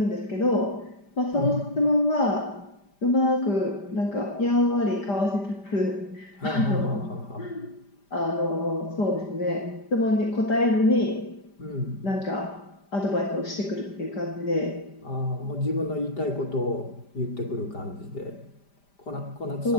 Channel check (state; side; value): late; right; 5.0 ms